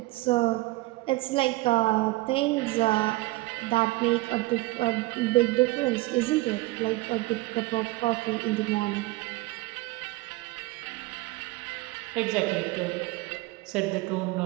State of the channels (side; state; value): left; quieter; 20.4 dB